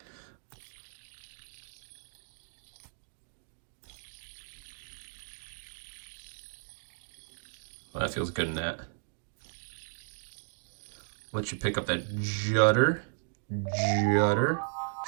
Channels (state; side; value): silent; left; digital silence